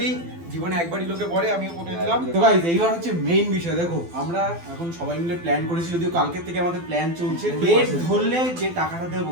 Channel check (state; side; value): late; left; 12 ms